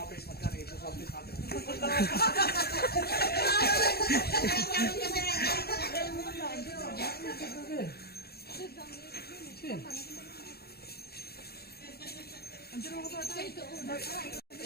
face mask ito sa office natin.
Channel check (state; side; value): late; right; 0.46 ms